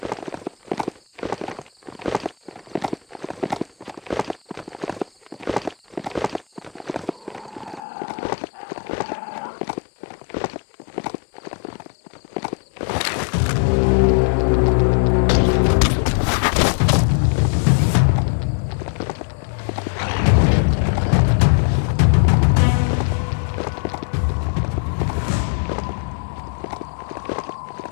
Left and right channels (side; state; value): right; drops out; at 7.8 s